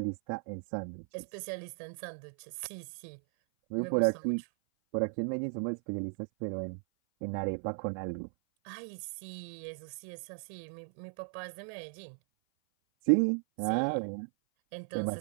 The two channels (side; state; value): left; silent; 54 dB below the other